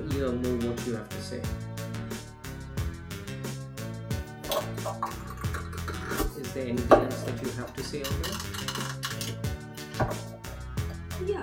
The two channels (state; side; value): identical; both; correlation 1.00